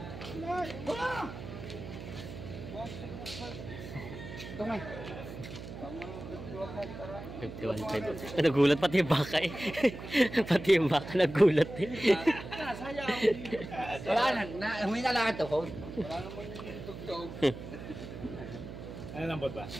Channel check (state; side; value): noise; right; hum, 11 dB below the sound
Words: 51.5. Nagulat pati yung baka eh. Pati yung baka nagulat eh. Wala na, huwi na lang ito ko. Ano lang ba?